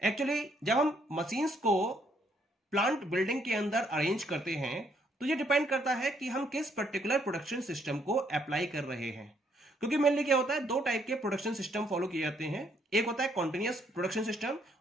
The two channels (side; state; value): both; normal; correlation 0.70